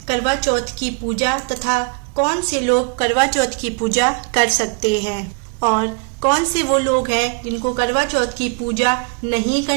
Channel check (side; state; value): left; quieter; 33.6 dB